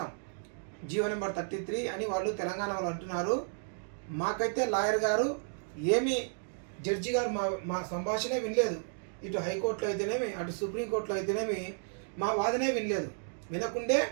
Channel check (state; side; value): silent; left; digital silence